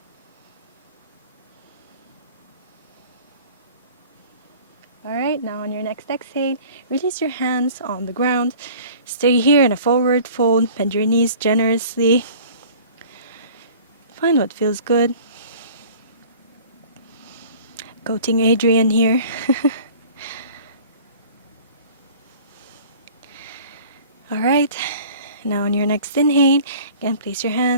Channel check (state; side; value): inverted; both; correlation -0.46